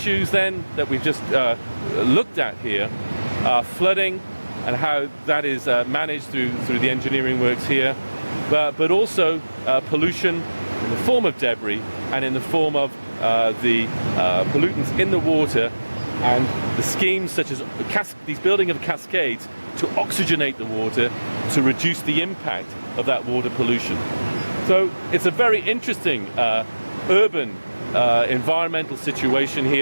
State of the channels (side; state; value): both; inverted; correlation -1.00